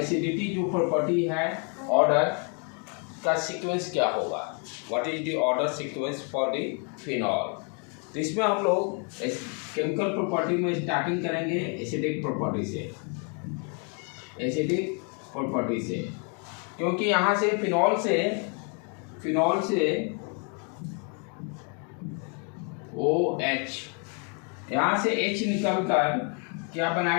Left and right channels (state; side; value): quieter; right; 38.8 dB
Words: जो प्रॉपर्टी है, ऑर्डर का सीक्वेंस क्या होगा, what is the order sequence for the phenol. तो इसमें हम लोग केमिकल प्रॉपर्टी में स्टार्टिंग करेंगे एसिडिक प्रॉपर्टी से, क्योंकि यहाँ से फिनॉल से OH, यहाँ से H निकलकर क्या